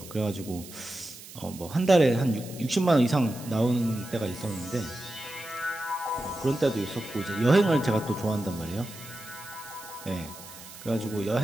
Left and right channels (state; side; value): noise; right; hiss, 16 dB below the sound